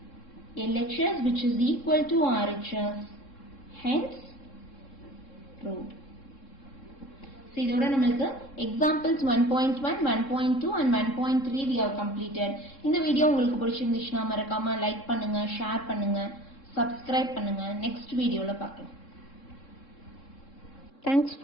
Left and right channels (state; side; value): late; right; 3.7 ms